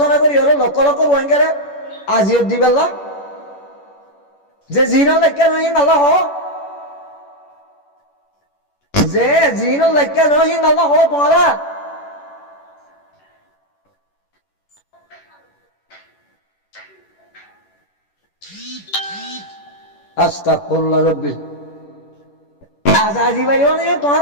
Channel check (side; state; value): right; late; 11 ms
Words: করি হলো লক্ষ লক্ষ রোহিঙ্গারে আজিও দিবেলা যে জিনল লেখা নহি নালা হ যে জিনল লেখা নহি নালা হ তোরা আস্তাগফিরুল্লাহ রাব্বি আজাজি ভাই ওনে